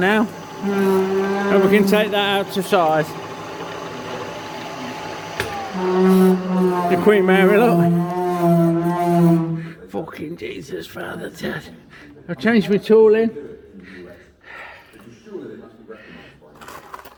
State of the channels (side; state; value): both; identical; correlation 1.00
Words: and we can take that out to size. The Queen Mary, look. Fucking Jesus, Father Dad. I'll change my tool in